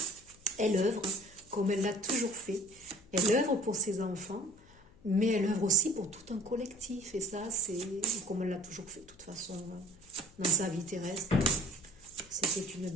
Elle œuvre comme elle l'a toujours fait. Elle œuvre pour ses enfants, mais elle œuvre aussi pour tout un collectif. Et ça, c'est comme elle l'a toujours fait, de toute façon, dans sa vie terrestre. C'était une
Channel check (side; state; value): left; noise; hum, 26 dB below the sound